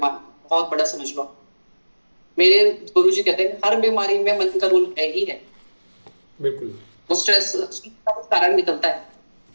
बहुत बड़ा, समझ लो। मेरे गुरुजी कहते हैं हर बीमारी में मन का रोल है ही है। बिल्कुल, वो स्ट्रेस का कारण निकलता है।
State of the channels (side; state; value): both; inverted; correlation -1.00